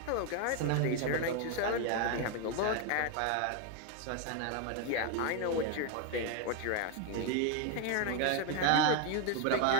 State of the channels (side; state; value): both; different; correlation 0.01